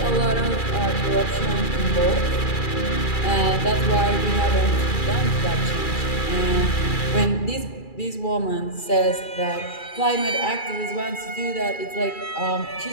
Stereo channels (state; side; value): late; right; 2.4 ms